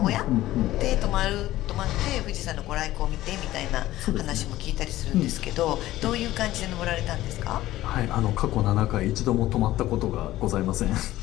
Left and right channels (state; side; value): quieter; right; 15.5 dB